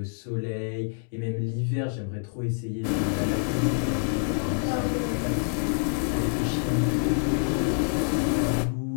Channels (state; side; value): silent; right; 60 dB below the other